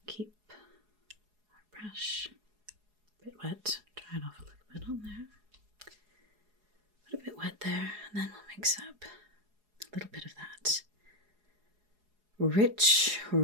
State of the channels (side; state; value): left; late; 4.8 ms